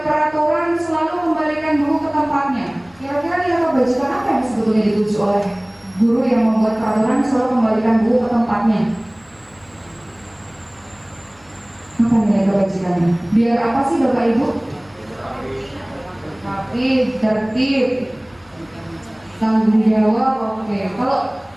peraturan selalu kembalikan buku ke tempatnya, kira-kira dia kebajikan apa yang sebetulnya dituju oleh guru yang membuat peraturan selalu kembalikan buku ke tempatnya? Apa nilai kebajikannya? Biar apa sih Bapak Ibu? Rapi, tertib, tanggung jawab. Oke. Kalau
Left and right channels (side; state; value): left; noise; hum, 30 dB below the sound